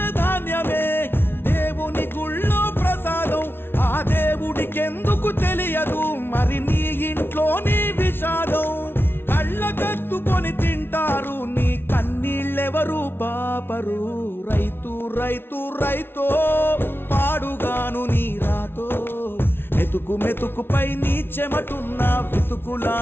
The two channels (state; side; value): late; right; 0.11 ms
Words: ధాన్యమే దేవుని గుళ్ళో ప్రసాదం ఆ దేవుడికెందుకు తెలియదు మరి నీ ఇంట్లో నీ విషాదం కళ్ళకత్తుకొని తింటారు నీ కన్నీళ్ళెవరు పాపరు రైతు రైతు రైతో పాడుగాను నీ రాతో మెతుకు మెతుకుపై నీ చెమటున్న